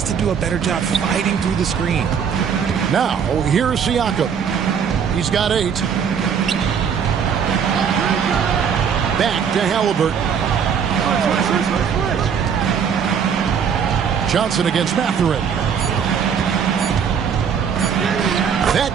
to do a better job fighting through the screen. Now, here's Siakam. He's got 8. Back to Halliburton. Johnson against Mathurin.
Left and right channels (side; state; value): left; quieter; 7.2 dB